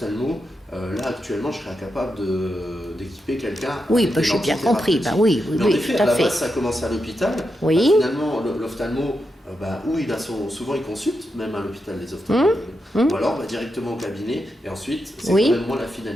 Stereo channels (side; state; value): both; normal; correlation 0.86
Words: là actuellement je serais incapable d'équiper quelqu'un. Oui, bah, j'ai bien compris, bah, oui, Mais en effet, tout à à la fait. base ça commence à l'hôpital. Oui. Bah, finalement l'ophtalmo, où il a souvent il consulte, même à l'hôpital les ophtalmologues, ou alors directement au cabinet, et ensuite c'est quand même moins la